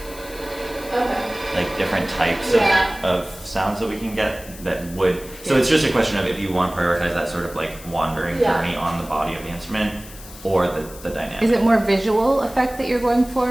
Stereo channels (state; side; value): noise; left; hiss, 17 dB below the sound